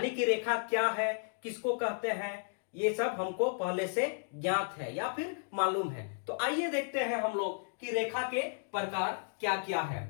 कि रेखा क्या है, किसको कहते हैं, ये सब हमको पहले से ज्ञात है या फिर मालूम है। तो आइए देखते हैं हम लोग कि रेखा के प्रकार क्या क्या है।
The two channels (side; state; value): right; silent; digital silence